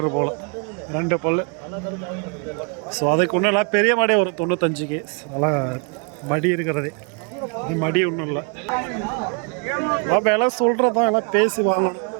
போல். 2 பல்லு. ஸோ அதுக்கு ஒன்றும் இல்லை, பெரிய மாடே ஒரு 95க்கு. நல்லா மடி இருக்கிறதே, இது மடி ஒன்றும் இல்லை. விலை சொல்கிறதான் எல்லாம் பேசி வாங்கணும்.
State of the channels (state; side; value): quieter; left; 38.7 dB